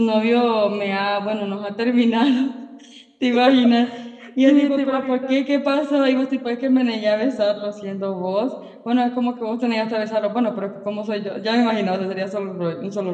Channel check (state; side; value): identical; both; correlation 1.00